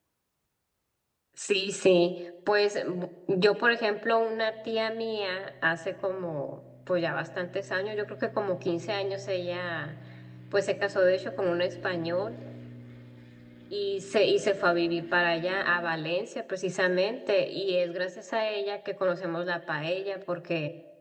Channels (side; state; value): both; identical; correlation 1.00